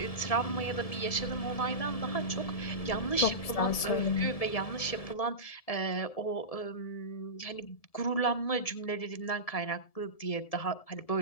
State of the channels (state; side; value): late; right; 1.7 ms